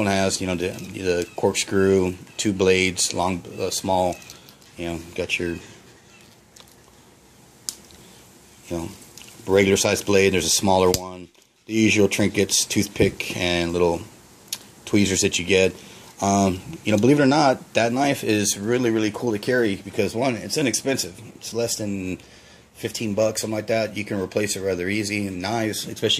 has the corkscrew, 2 blades, long, small. Got your regular sized blade. There's a smaller one. The usual trinkets, toothpick, and little tweezers that you get. Believe it or not, that knife is really cool to carry because, one, it's inexpensive. It's less than 15 bucks, something like that. You can replace it rather easy. And knives,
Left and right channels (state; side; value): identical; both; correlation 1.00